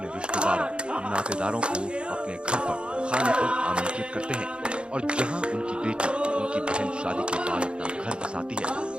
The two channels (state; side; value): late; left; 0.055 ms